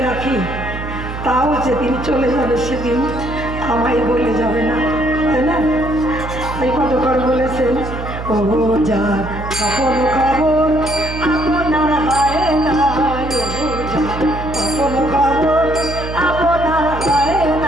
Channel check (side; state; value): right; noise; hum, 8 dB below the sound